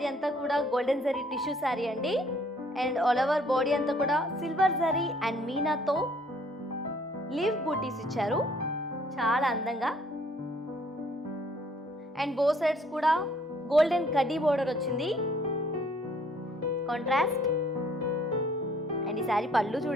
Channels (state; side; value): normal; both; correlation 0.61